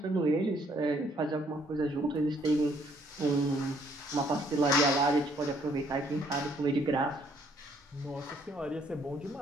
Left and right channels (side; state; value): both; normal; correlation 0.66